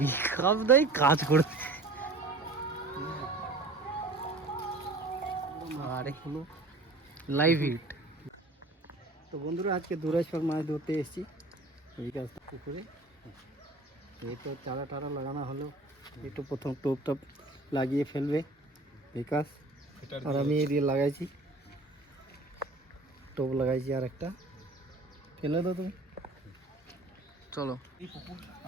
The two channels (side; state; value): left; quieter; 3.0 dB